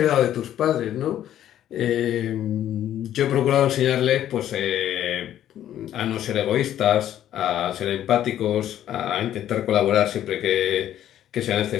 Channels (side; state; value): right; quieter; 11.5 dB